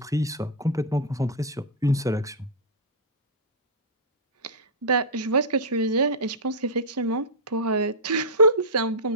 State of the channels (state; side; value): normal; both; correlation -0.09